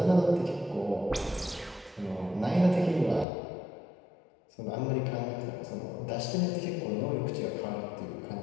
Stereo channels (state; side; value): drops out; right; at 3.2 s